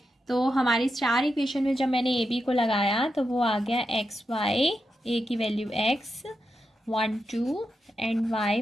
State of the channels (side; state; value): both; normal; correlation 0.87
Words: तो हमारी स्टार इक्वेशन में जब मैंने ए बी को लगाया तो वो आ गया एक्स वाई, ए की value X 1 2 and Y